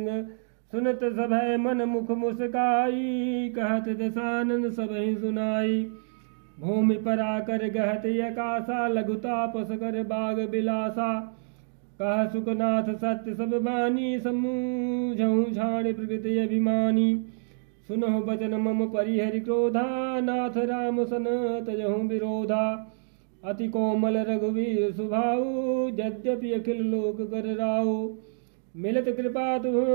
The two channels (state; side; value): silent; left; digital silence